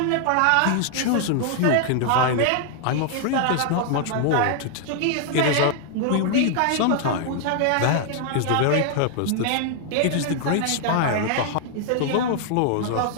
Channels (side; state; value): both; different; correlation 0.00